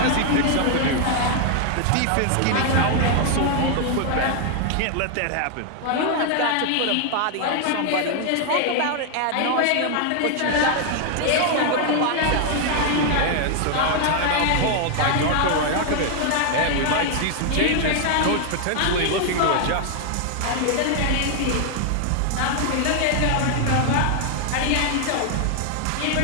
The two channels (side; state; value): both; different; correlation 0.00